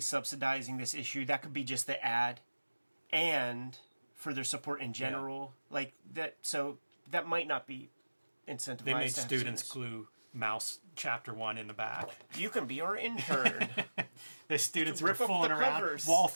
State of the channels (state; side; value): inverted; both; correlation -1.00